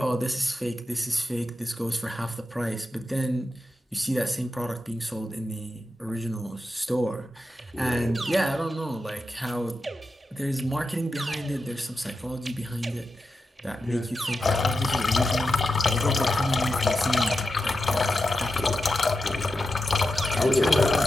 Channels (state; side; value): normal; both; correlation 0.89